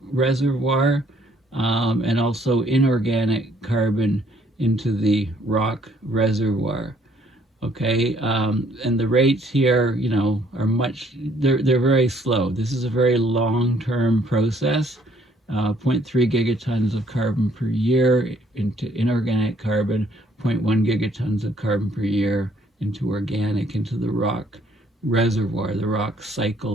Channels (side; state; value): both; normal; correlation 0.63